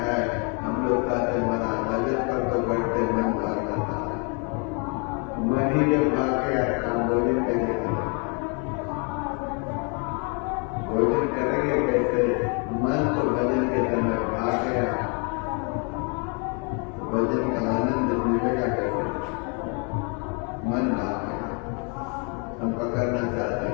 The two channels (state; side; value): quieter; right; 35.8 dB